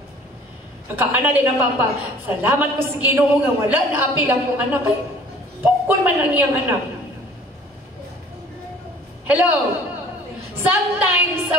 Nakaana din ang papa, salamat ko sa Ginoo nga wala na apil akong anak. Ay, pukul man ang iyang anak. Hello? Sometimes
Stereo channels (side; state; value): both; normal; correlation 0.51